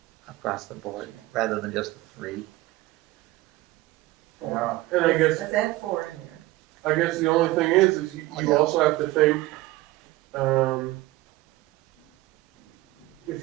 across the board, Yeah. rather than just 3. Yeah. And I guess, Let's add 4 in there. I guess the only thing is you also have to think,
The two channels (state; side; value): quieter; left; 18.6 dB